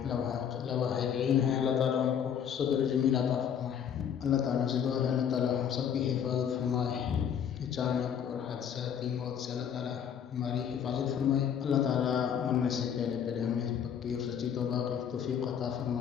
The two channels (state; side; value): quieter; right; 8.3 dB